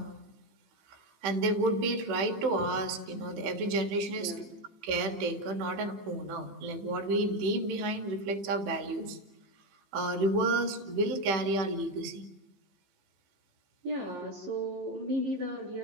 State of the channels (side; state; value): left; late; 15 ms